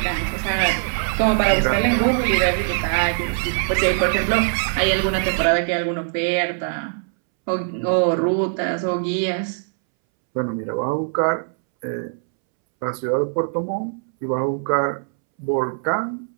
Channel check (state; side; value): silent; left; 65 dB below the other